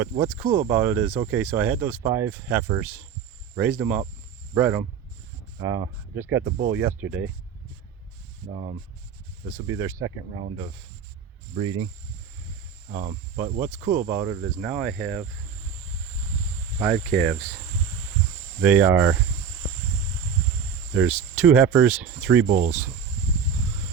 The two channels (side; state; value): left; quieter; 7.0 dB